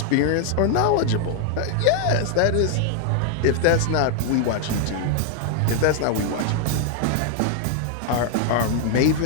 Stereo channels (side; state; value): both; different; correlation 0.00